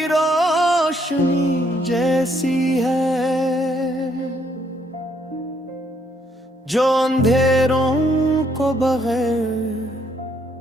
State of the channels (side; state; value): both; normal; correlation 0.70